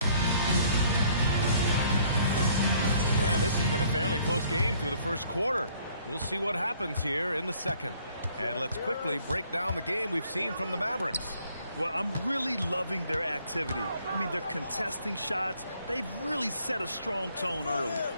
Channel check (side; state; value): both; inverted; correlation -0.61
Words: And this has been a fairly close game through the first quarter. We'll see what happens here in the second. And let's quickly break down the game we've seen from the Mavericks. Well, I'm really loving their activity. I mean, they're contesting shots. They've really set a strong tone early.